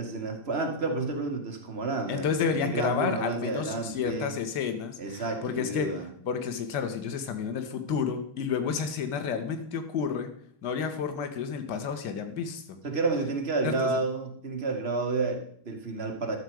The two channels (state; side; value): late; left; 2.4 ms